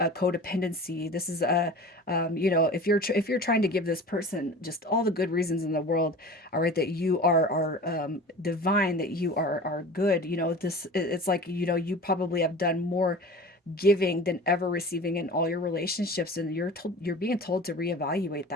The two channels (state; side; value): normal; both; correlation 0.38